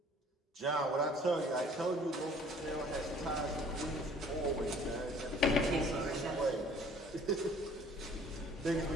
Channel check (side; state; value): both; normal; correlation 0.54